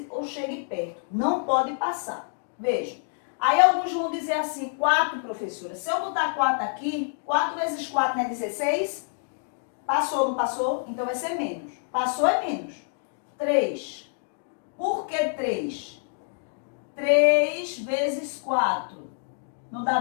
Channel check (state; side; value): silent; right; digital silence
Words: ou chegue perto. Não pode passar. Veja. Aí alguns vão dizer assim, 4, professora. Se eu botar 4 aqui, 4 vezes 4 não é 16? Passou ou não passou? Então vai ser menos. Passou é menos. 3. Por que 3? 3 vezes 4. Não dá